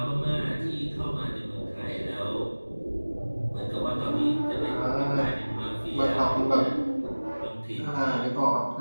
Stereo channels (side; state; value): both; inverted; correlation -1.00